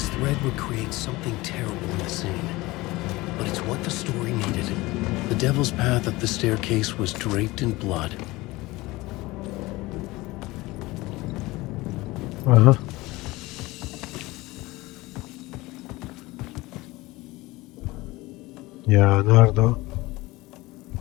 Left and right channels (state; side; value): quieter; right; 20.6 dB